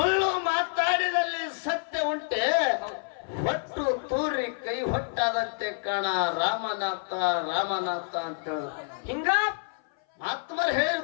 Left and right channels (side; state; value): right; silent; 57 dB below the other